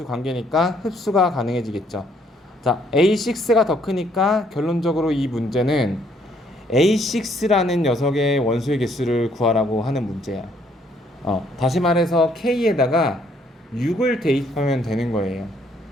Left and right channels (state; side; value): normal; both; correlation 0.67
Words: 관계니까 흡수가 가능해지겠죠. 자, A6가 더 크니까 결론적으로 이 문제는 A6라는 녀석의 원소의 개수를 구하라고 하는 문제야. 다시 말해서 K에다가 6을 대입하면 되는 거예요.